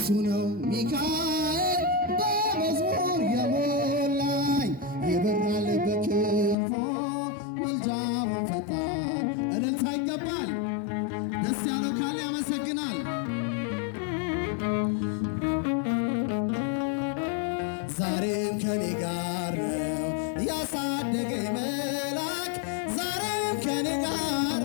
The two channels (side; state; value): right; drops out; at 6.6 s